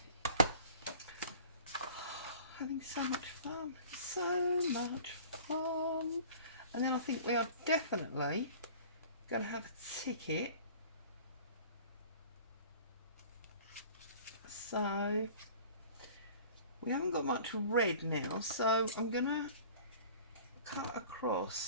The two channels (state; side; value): inverted; both; correlation -0.45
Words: Having so much fun. So much fun. And then I think we are definitely going to have a ticket. So we haven't got much red now, so I'm going to cut